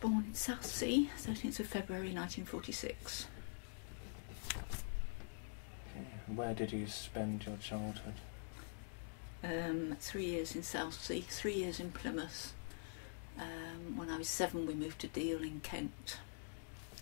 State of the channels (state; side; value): silent; right; digital silence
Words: in Southsea, 13th of February 1946. Okay. Where did you spend your childhood? 3 years in Southsea, 3 years in Plymouth. When I was 7 we moved to Deal in Kent